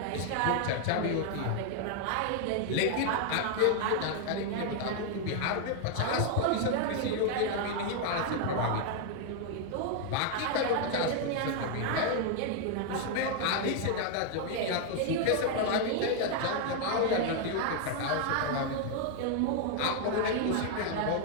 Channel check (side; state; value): both; different; correlation 0.00